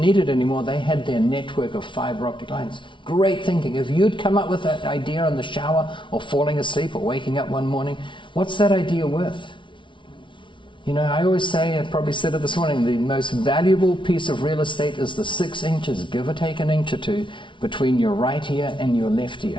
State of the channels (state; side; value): late; right; 0.24 ms